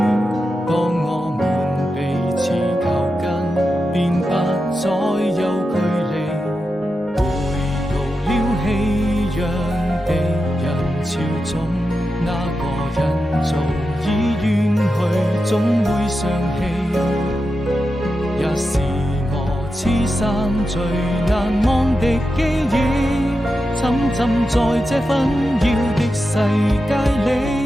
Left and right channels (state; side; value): normal; both; correlation 0.89